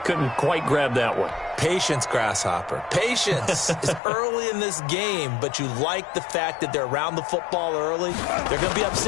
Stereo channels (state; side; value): drops out; right; at 4.0 s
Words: Couldn't quite grab that one. Patience, Grasshopper. Patience is early in this game, but you like the fact that they're around the football early. They're going to be